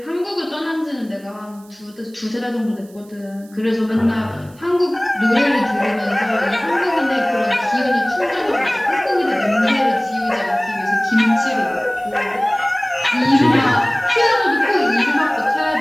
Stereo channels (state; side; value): noise; right; hiss, 27 dB below the sound